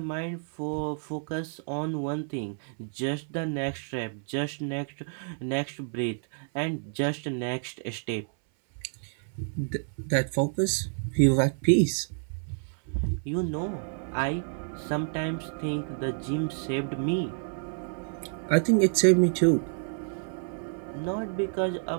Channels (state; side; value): silent; left; 58 dB below the other